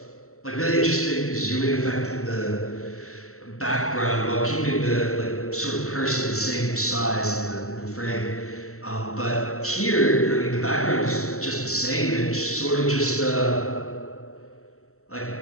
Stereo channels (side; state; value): right; late; 0.63 ms